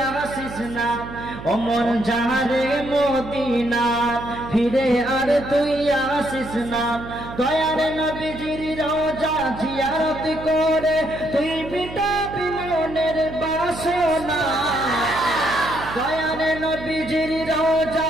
আসিস না, অমন যাহারে মদিনা ফিরে আর তুই আসিস না। দয়ার নবীজির রওজা জিয়ারত করে তুই মিটাবি মনের বাসনা, দয়ার নবীজির রওজা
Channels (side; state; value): right; noise; hum, 12 dB below the sound